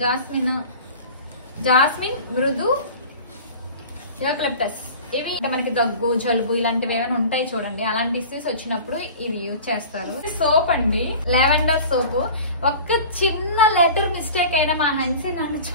జాస్మిన్, మృదు, యూకలిప్టస్. ఇవి మనకి దగ్గు, జలుబు ఇలాంటివి ఏమైనా ఉంటాయి చూడండి, అలాంటి ఇష్యూస్ వచ్చినప్పుడు ఇది యూజ్ చేస్తారు. సోప్ అండి, లావెండర్ సోప్. ఒక్క చిన్న లెటర్ మిస్టేక్ అయినా మా హన్సీ నన్ను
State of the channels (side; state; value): both; inverted; correlation -0.39